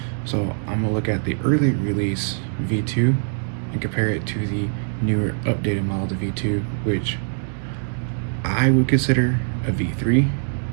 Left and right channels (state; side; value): silent; left; digital silence